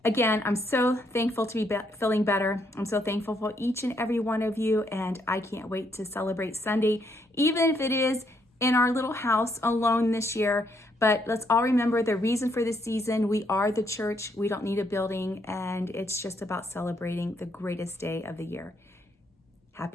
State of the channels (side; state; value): both; normal; correlation 0.73